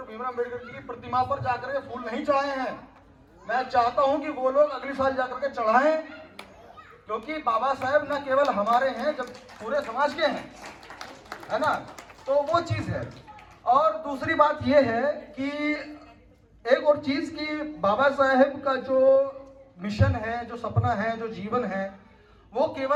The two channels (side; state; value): both; identical; correlation 1.00